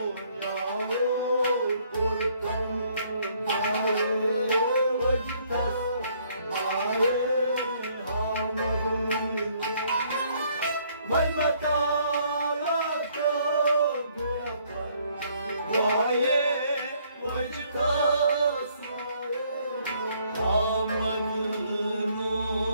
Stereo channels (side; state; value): both; inverted; correlation -0.65